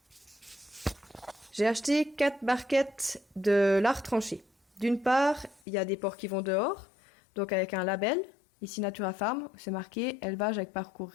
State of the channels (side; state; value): right; drops out; at 5.6 s